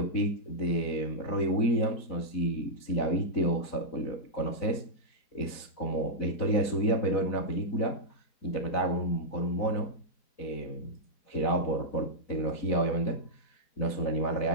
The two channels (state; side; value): late; right; 4.0 ms